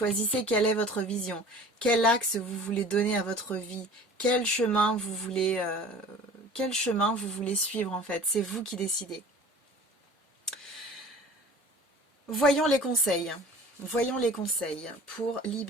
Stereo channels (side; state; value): both; normal; correlation 0.44